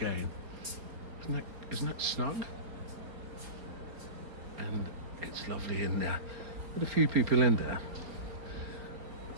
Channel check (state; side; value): late; left; 4.2 ms